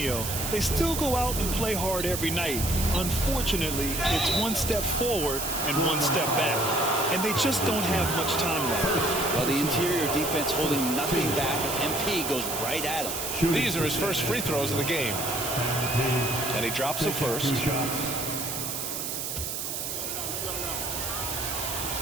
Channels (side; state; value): right; noise; hiss, 4 dB below the sound